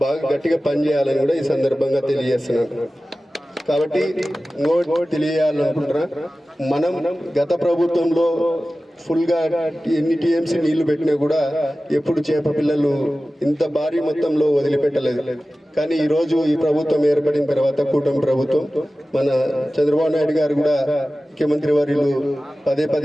బాగా గట్టిగా పనిచేయాలని కూడా ఈ సందర్భంగా తెలియజేస్తున్నాను. కాబట్టి ఇంకోటి తెలియాలనుకుంటున్నా, మనం గత ప్రభుత్వంలో ఫుల్గా ఎన్ని టీఎంసీ నీళ్లు పెట్టినా కూడా ఎప్పుడు చేప పిల్లలు ఇంత భారీ మొత్తంలో వదిలిపెట్టలేదు. కానీ ఈరోజు ఈ ప్రభుత్వం ఏర్పడిన తర్వాత కూటమి ప్రభుత్వం మన చంద్రబాబు నాయుడు గారు కూడా ముఖ్యమంత్రి వర్యులు పదే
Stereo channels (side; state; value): both; normal; correlation 0.96